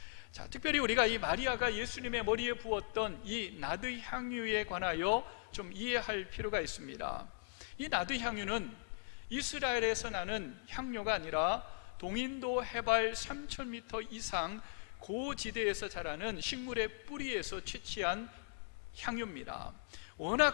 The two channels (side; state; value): right; silent; digital silence